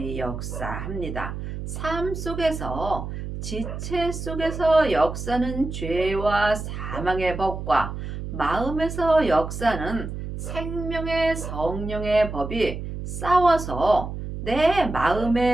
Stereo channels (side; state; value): right; noise; hum, 7 dB below the sound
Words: 역사합니다. 삶 속에서 지체 속에서 역사는 죄와 사망의 법과 마음에서 역사는 생명의 성령의 법이 싸워서 내